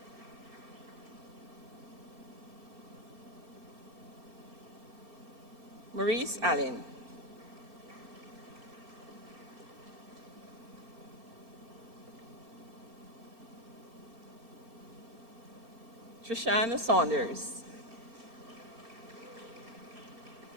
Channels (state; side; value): late; left; 2.6 ms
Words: Maurice Allen. Trishana Saunders.